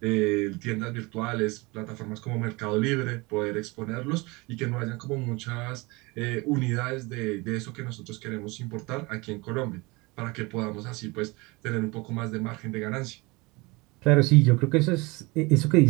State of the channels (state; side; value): quieter; left; 24.8 dB